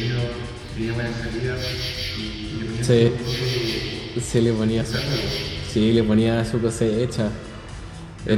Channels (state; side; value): identical; both; correlation 1.00